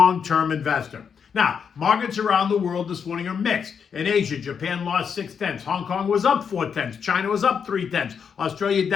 investor. Now, markets around the world this morning are mixed. In Asia, Japan lost 0.6. Hong Kong was up 0.4. China was up 0.3. Australia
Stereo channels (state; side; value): quieter; right; 6.8 dB